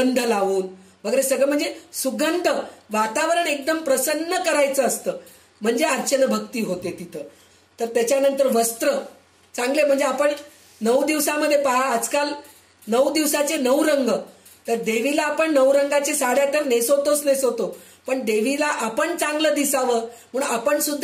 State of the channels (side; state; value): both; identical; correlation 1.00